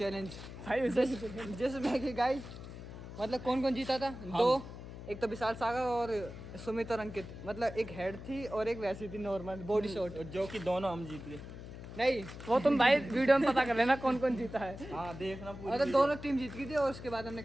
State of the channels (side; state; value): left; noise; hum, 12 dB below the sound